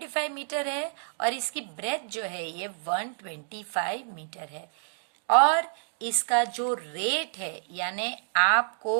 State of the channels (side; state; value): left; silent; digital silence